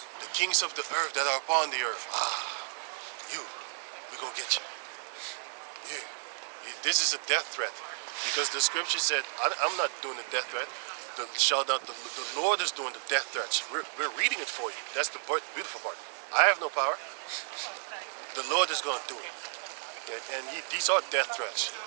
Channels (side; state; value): left; silent; 55 dB below the other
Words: The kings of the earth that are upon the earth. We're gonna get you. Yeah. This is a death threat. Because the scripture said, I'm not doing the death threat. The Lord is doing the death threats. We're reading it for you. That's the beautiful part. I have no power. The Lord is going to do it. And these are death threats.